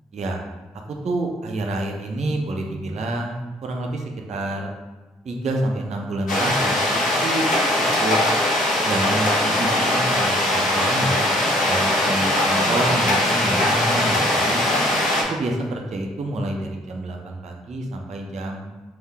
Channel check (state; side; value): normal; both; correlation 0.57